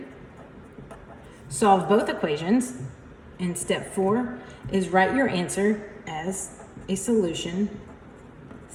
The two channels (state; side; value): identical; both; correlation 1.00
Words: solve both equations. And step four is write your answer as a solution